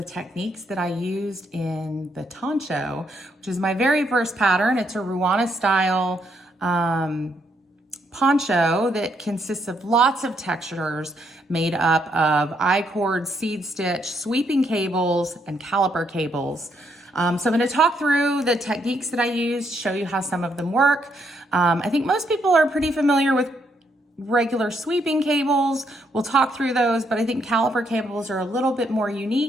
techniques that I used in the Toncho, which is my very first pattern. It's a Ruana style poncho that consists of lots of textures made up of I-cord, seed stitch, sweeping cables, and caliper cables. So I'm going to talk through the techniques that I used, show you how some of them work. I think most people are pretty familiar with regular sweeping cables. We'll talk through those, but I think caliper cables are a little bit more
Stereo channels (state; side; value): normal; both; correlation 0.75